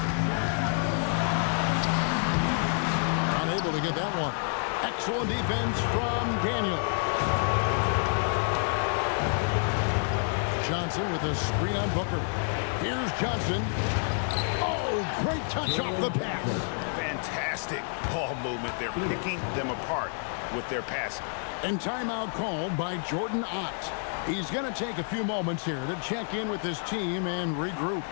Unable to get that one. Excellent defense from Daniel. Johnson with a screen on Booker. Here's Johnson. Oh, great touch off the pass. Fantastic ball movement. They're picking them apart with their passing. And timeout called by Jordan Ott. He's going to take a few moments here to check in with his team and regroup.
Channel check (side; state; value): right; silent; 57 dB below the other